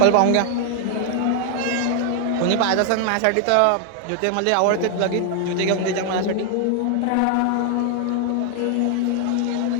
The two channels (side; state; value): both; different; correlation 0.00